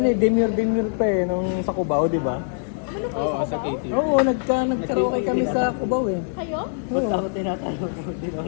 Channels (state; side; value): silent; right; digital silence